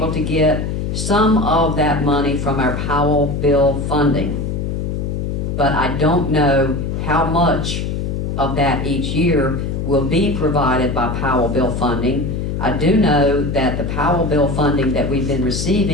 to get some of that money from our Powell bill funding. But I don't know how much of that each year will be provided by Powell bill funding. I do know that the Powell bill funding that we've been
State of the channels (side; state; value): left; noise; hum, 2 dB below the sound